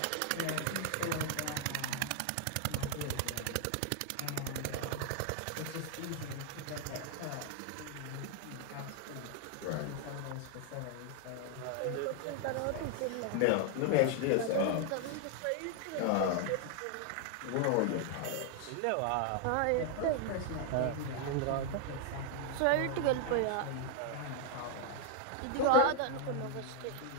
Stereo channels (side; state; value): both; different; correlation 0.00